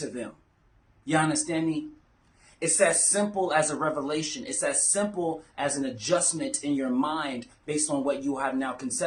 them. You understand me? It's as simple as a revelation. It's as simple as an adjustment in your mind based on what you have now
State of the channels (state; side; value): identical; both; correlation 1.00